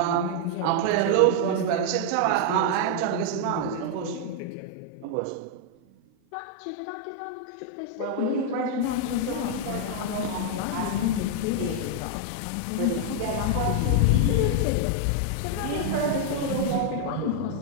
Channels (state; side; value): different; both; correlation 0.00